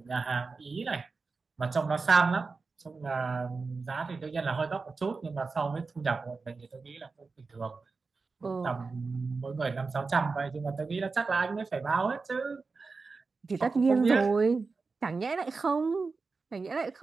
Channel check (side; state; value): left; quieter; 4.3 dB